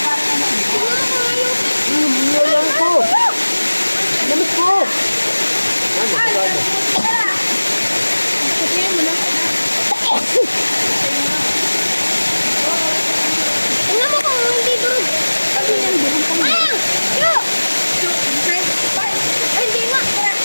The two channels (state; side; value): inverted; both; correlation -1.00